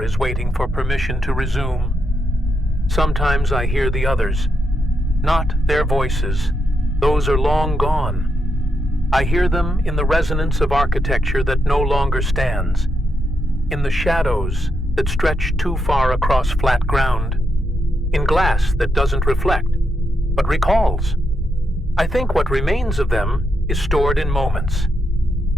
is waiting for permission to resume. Sometimes I hear the others, not their voices. Those are long gone. I hear them in the resonance of architecture that no longer stands, in the shadows that stretch too far across flat ground, in glass that doesn't reflect, but recalls. I think what remains of them is stored in moments,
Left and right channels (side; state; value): both; normal; correlation 0.82